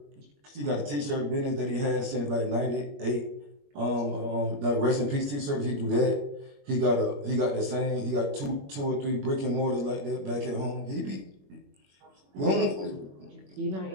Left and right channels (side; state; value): left; late; 21 ms